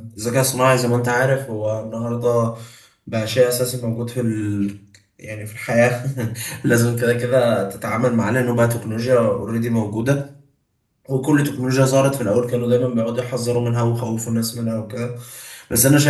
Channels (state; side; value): identical; both; correlation 1.00